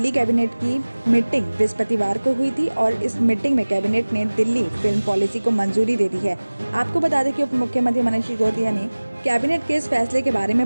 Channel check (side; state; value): both; inverted; correlation -1.00